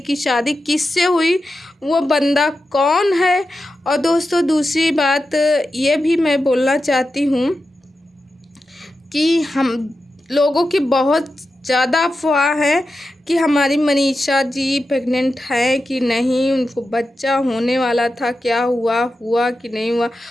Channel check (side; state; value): both; normal; correlation 0.90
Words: की शादी किससे हुई, वो बंदा कौन है। और दोस्तों दूसरी बात ये भी मैं बोलना चाहती हूँ कि हम लोगों की बहुत ज़्यादा अफवाह है कि हमारी मनीषा जी प्रेग्नेंट है कि नहीं, उनको बच्चा होने वाला था, क्या हुआ कि नहीं हुआ,